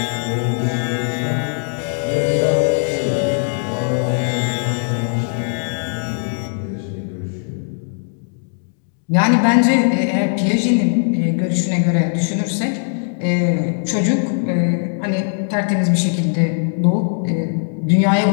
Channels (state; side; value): silent; right; digital silence